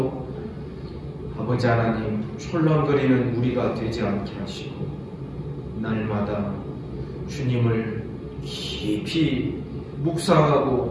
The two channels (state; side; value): identical; both; correlation 1.00